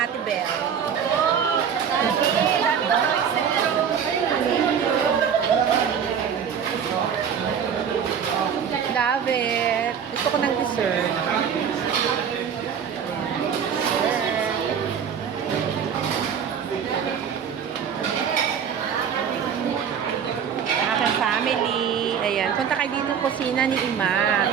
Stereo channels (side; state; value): left; quieter; 7.6 dB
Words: Bel. Love it. Gusto ko ng dessert. Aking family. Ayan. Punta kayo dito kusina ni Ima.